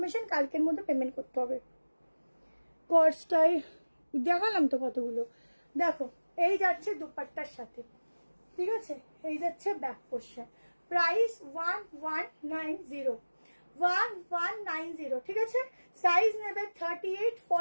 কালকের মধ্যে পেমেন্ট করতে হবে। কস্টটাই দেখালাম তো কতগুলো, দেখো এই যাচ্ছে দুপাট্টার সাথে, ঠিক আছে, এই যাচ্ছে ব্যাক পোর্শন, প্রাইস 1190, 1190, ঠিক আছে। সাইজ নেবে 38,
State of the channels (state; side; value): inverted; both; correlation -1.00